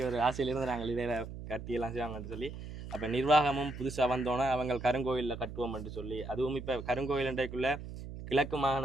ஒரு ஆசையிலிருந்து நாங்கள் இதில் கட்டியெல்லாம் செய்வாங்கன்னு சொல்லி அப்போ நிர்வாகமும் புதுசாக வந்தோன்னே அவங்க கருங்கோயிலில் கட்டுவோம் என்று சொல்லி, அதுவும் இப்போ கருங்கோயில் என்றைக்குள்ளே கிழக்கு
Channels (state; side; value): noise; right; hum, 10 dB below the sound